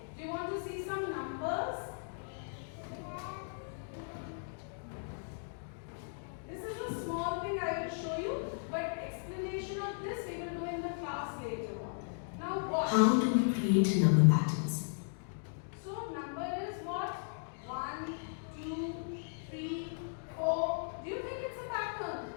Do you want to see some numbers? This is a small thing I will show you, but explanation of this we will do in the class later on. Now what? How do we create number patterns? So number is what? 1, 2, 3, 4. Do you think it's a pattern?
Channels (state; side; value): silent; right; digital silence